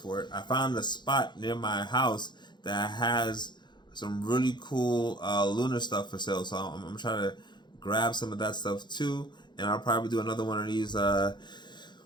for it. I found a spot near my house that has some really cool Lunar stuff for sale. So I'm trying to grab some of that stuff too. And I'll probably do another one of these when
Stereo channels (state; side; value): late; right; 0.21 ms